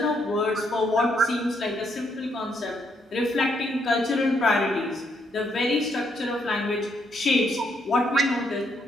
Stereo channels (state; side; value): normal; both; correlation 0.74